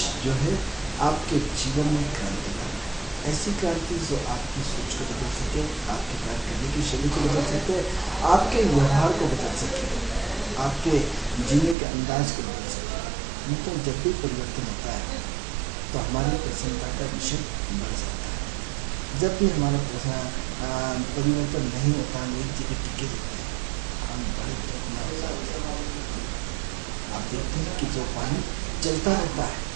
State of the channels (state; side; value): drops out; left; at 11.8 s